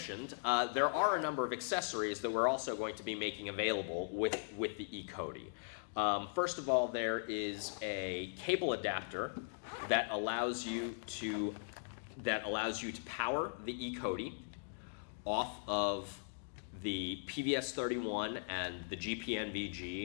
there are a number of accessories that we're also going to be making available with the ECOTI. First of all, there is a cable adapter that allows you to power the ECOTI off of the PVS 31 and the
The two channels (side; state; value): right; silent; digital silence